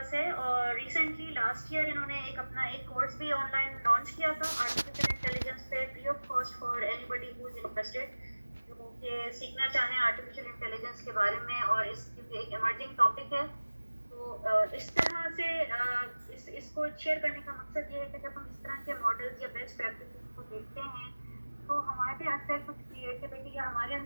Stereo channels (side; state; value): both; inverted; correlation -1.00